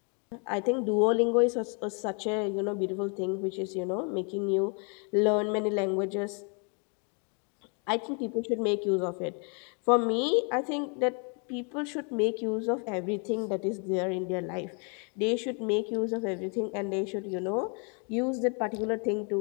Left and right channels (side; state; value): right; quieter; 37.3 dB